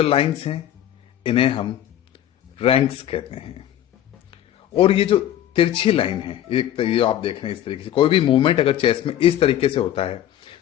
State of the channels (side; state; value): right; quieter; 11.7 dB